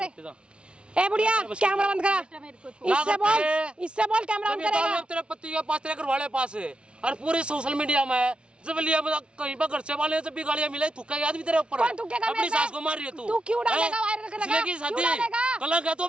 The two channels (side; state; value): left; late; 0.058 ms